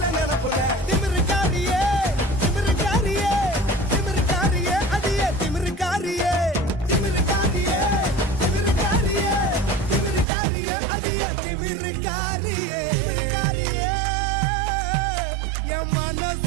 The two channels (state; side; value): drops out; left; at 10.2 s